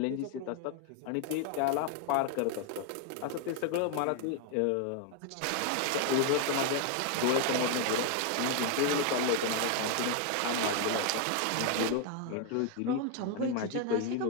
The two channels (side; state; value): both; different; correlation 0.01